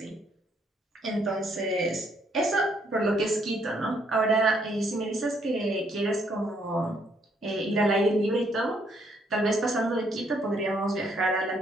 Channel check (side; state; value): both; normal; correlation 0.70